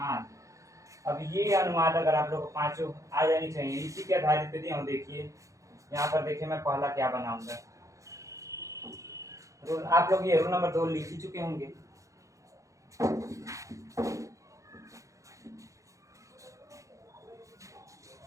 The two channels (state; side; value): late; left; 0.15 ms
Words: अब ये अनुवाद अगर आप लोग को पांचों आ जानी चाहिए, इसी के आधारित पे दिया हूँ। देखिए यहाँ पर देखिए मैं पहला क्या बनाऊंगा, रोल आप लोग ये रोल नंबर 2 लिख ही चुके होंगे।